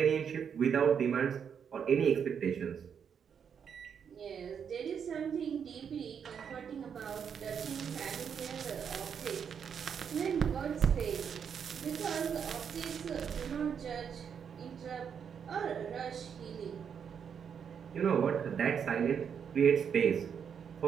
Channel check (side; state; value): left; quieter; 7.4 dB